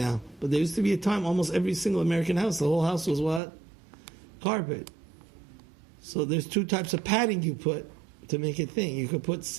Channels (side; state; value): left; drops out; at 3.4 s